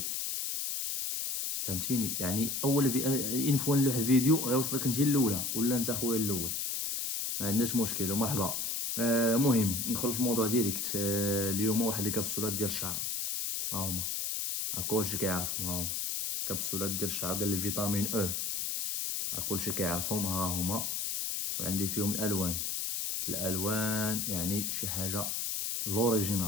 فهمتيني؟ يعني اول ان فوا نلوح الفيديو غيوصلك انت الاولى ولا انت خويا الاول، ما عندناش مشكل ومرحبا. مهم ندخل في الموضوع ديريكت. اليوم واحد الكبسولات ديال الشعر، ها هما، كلشي كيعرفهم، ها هما كبسولات ديال الشعر ديال الفيتامين او، كلشي كيعرفهم، ها هما. وعندي فيهم الالوان يعني شي حاجه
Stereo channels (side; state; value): left; noise; hiss, 1 dB below the sound